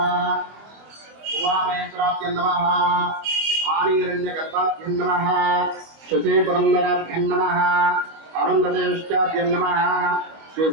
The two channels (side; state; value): left; late; 25 ms